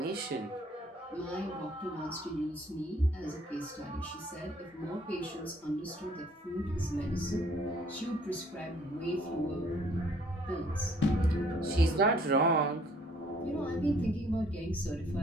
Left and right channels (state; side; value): normal; both; correlation 0.60